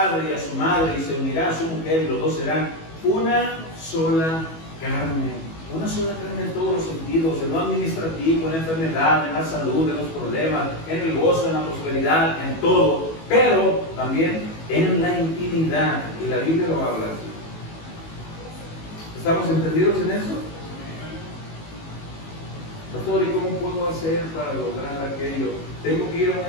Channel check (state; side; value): late; right; 19 ms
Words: y a su madre y se unirá a su mujer y los dos serán una sola carne. Una sola carne en todos los sentidos, en lo administrativo, en la enfermedad, en la salud, en los problemas, en el gozo, en la prosperidad, en todo. Pero también en la intimidad. Y la Biblia lo habla así. ¿Estamos entendidos en eso? Pastor, ¿y cómo puedo hacer para lograr aquello? ¿Tengo que ir a